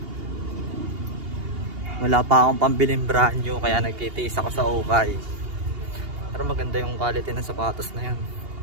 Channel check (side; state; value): left; late; 2.8 ms